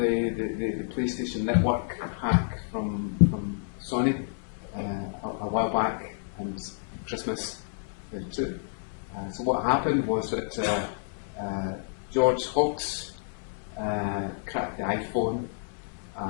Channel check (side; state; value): right; silent; 58 dB below the other